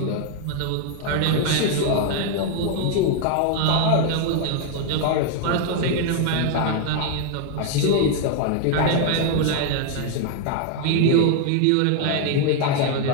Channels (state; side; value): different; both; correlation 0.00